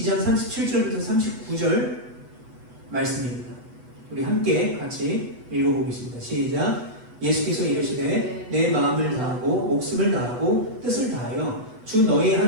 37절부터 39절 말씀입니다. 우리 함께 같이 읽어보겠습니다. 시작. 예수께서 이르시되 내 마음을 다하고 목숨을 다하고 뜻을 다하여 주 너희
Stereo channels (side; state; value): left; late; 8.1 ms